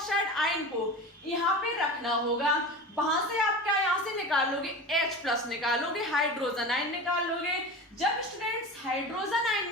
आयन को यहाँ पे रखना होगा। वहां से आप क्या यहाँ से निकालोगे, H+ निकालोगे, हाइड्रोजन आयन निकालोगे। जब स्टूडेंट्स हाइड्रोजन आयन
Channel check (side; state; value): both; normal; correlation 0.31